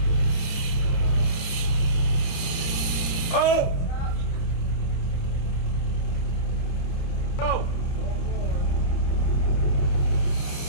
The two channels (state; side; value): late; right; 30 ms